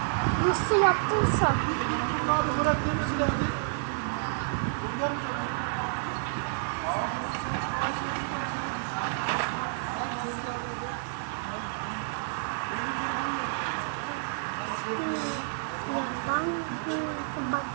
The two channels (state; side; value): silent; left; 57 dB below the other